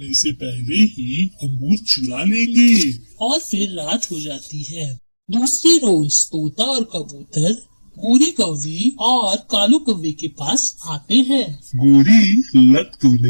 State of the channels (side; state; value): both; inverted; correlation -1.00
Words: से पहले ही अंगूर चुरा लेंगे। और फिर रात हो जाती है। दूसरी रोज तोता और कबूतर गोरी कौवी और कालू कौवे के पास आते हैं। गोरी, लग तो